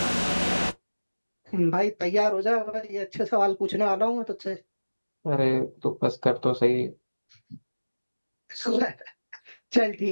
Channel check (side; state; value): both; inverted; correlation -1.00